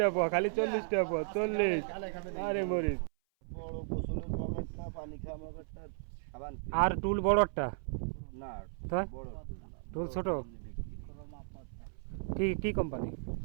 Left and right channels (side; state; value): left; silent; 54 dB below the other